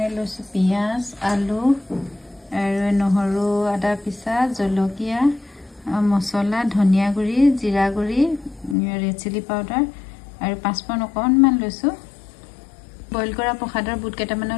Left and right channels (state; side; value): drops out; right; at 8.8 s